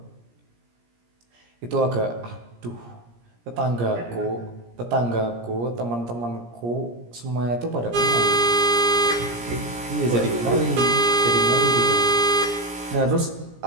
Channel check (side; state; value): left; late; 17 ms